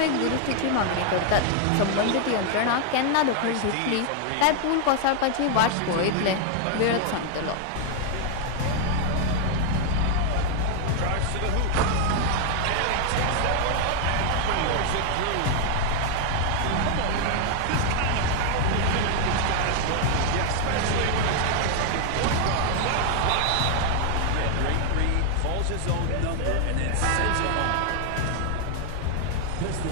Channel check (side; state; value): both; different; correlation 0.00